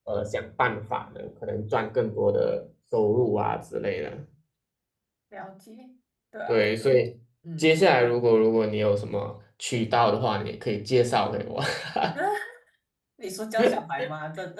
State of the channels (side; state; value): both; identical; correlation 1.00